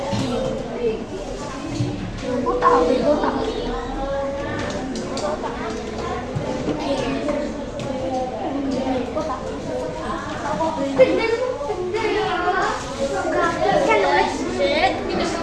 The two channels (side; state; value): both; identical; correlation 1.00